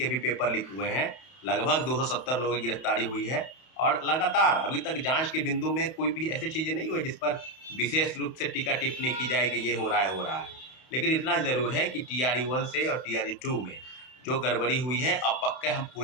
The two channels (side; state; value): right; late; 31 ms